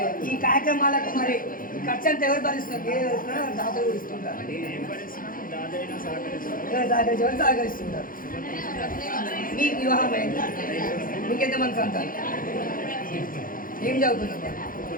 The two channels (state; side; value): late; right; 0.40 ms